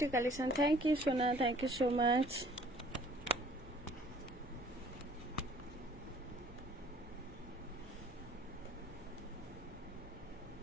কালেকশন, থ্যাংক ইউ সোনা, thank you so much.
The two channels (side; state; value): both; normal; correlation 0.55